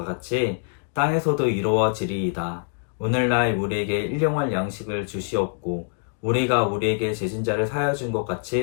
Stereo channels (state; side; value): silent; right; digital silence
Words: 같이 땅에서도 이루어지리이다. 오늘날 우리에게 일용할 양식을 주시옵고 우리가 우리에게 죄진 자를 사하여 준 것